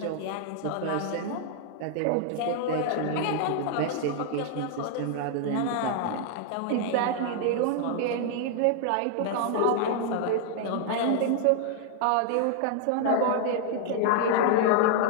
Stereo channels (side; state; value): both; different; correlation 0.00